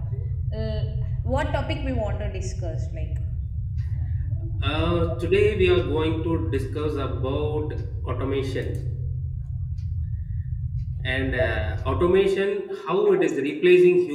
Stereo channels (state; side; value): identical; both; correlation 1.00